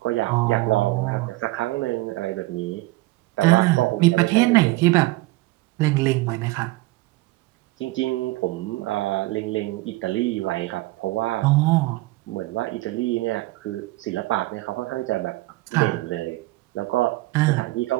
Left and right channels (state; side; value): quieter; left; 20.0 dB